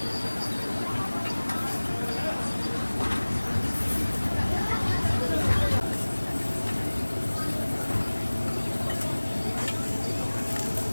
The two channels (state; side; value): inverted; both; correlation -1.00